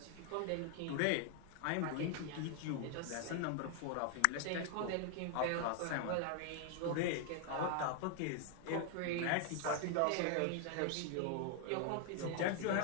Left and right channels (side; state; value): both; different; correlation 0.00